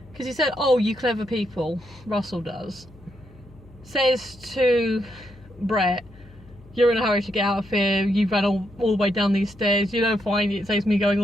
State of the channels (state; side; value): noise; left; hum, 23 dB below the sound